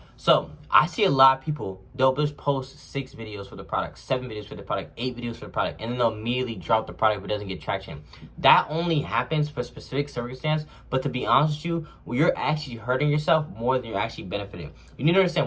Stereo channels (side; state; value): both; identical; correlation 1.00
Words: so, I see a lot of people, they'll just post 6 videos for the product, 7 videos for the product, 8 videos for the product, and then they'll immediately drop the product if it doesn't get traction. That only happens for specific circumstance, but to be honest with you, you're actually hurting yourself more than you're actually benefiting. You need to